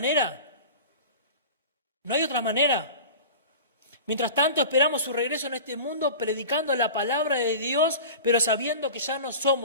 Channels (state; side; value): inverted; both; correlation -0.35